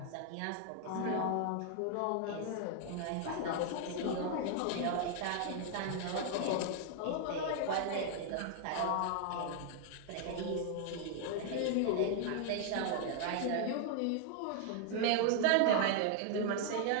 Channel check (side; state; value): both; different; correlation 0.00